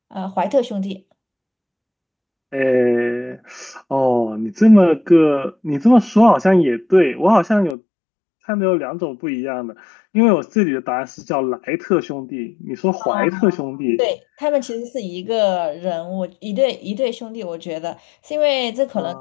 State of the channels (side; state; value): right; drops out; at 7.8 s